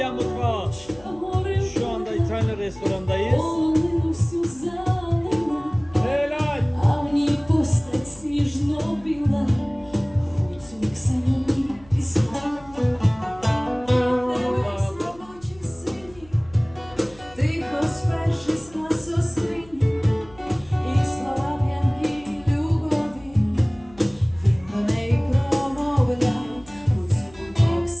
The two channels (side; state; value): left; noise; hum, 23 dB below the sound